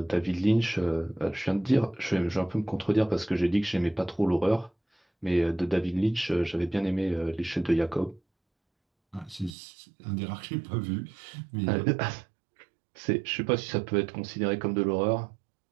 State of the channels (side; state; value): left; drops out; at 9.6 s